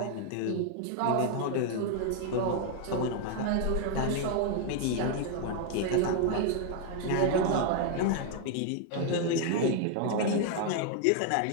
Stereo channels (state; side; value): different; both; correlation 0.00